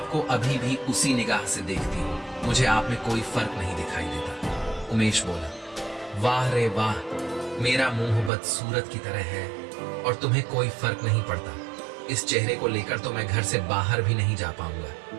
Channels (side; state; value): left; drops out; at 8.3 s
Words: अभी भी उसी निगाह से देखती हूँ, मुझे आप में कोई फर्क नहीं दिखाई देता। उमेश बोला, वाह रे वाह, मेरा मुंह बदसूरत की तरह है और तुम्हें कोई फर्क नहीं पड़ता। इस चेहरे को लेकर तो मैं घर से बाहर भी नहीं जा पाऊंगा।